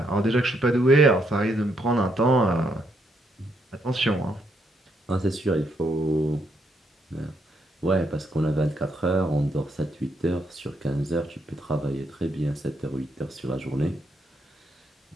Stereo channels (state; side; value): normal; both; correlation 0.76